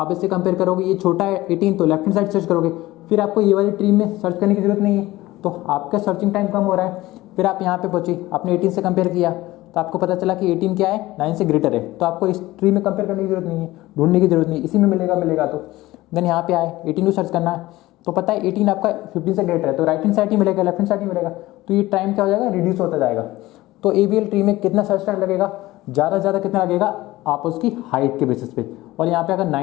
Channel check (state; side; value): quieter; right; 17.9 dB